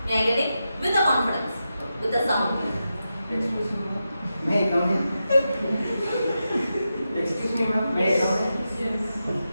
May I get it? With a confidence, with a sound. Excuse me, ma'am. May I come in? Excuse me, ma'am. May I come in?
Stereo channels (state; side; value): inverted; both; correlation -0.89